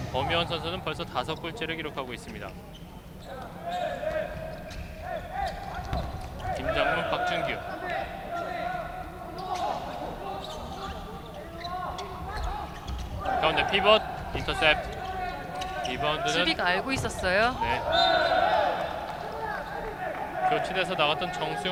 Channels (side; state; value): both; identical; correlation 1.00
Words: 엄효원 선수는 벌써 5골째를 기록하고 있습니다. 김장문, 박준규. 가운데 피벗, 인터셉트. 리바운드는 수비가 알고 있었어요. 네. 교체돼서 나갔던